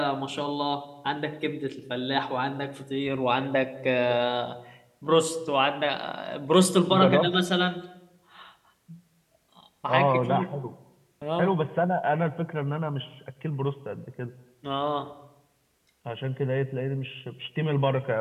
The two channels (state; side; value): identical; both; correlation 1.00